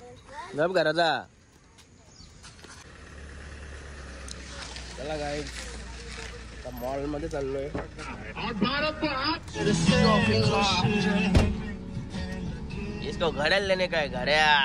गप घराचा चला काय मॉल मध्ये चाललोय इसको घड़ियाल लेने का है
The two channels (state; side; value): identical; both; correlation 1.00